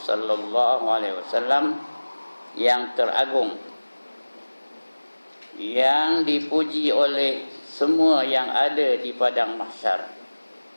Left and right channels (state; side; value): inverted; both; correlation -1.00